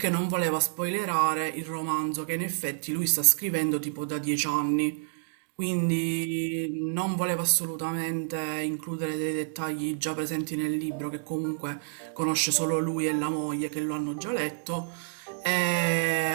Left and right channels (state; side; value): silent; left; digital silence